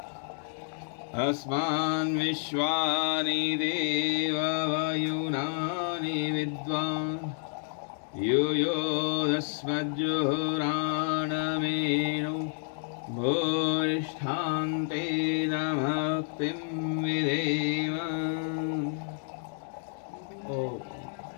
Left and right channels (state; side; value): silent; right; digital silence